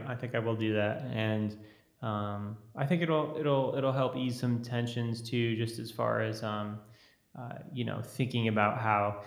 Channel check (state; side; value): identical; both; correlation 1.00